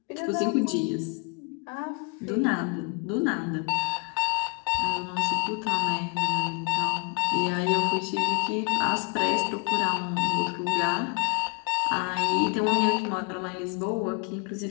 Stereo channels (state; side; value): quieter; right; 32.9 dB